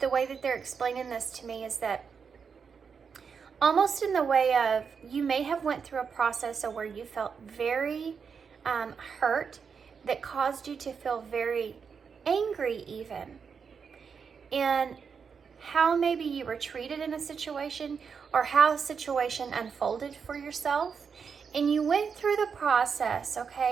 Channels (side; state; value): left; quieter; 6.1 dB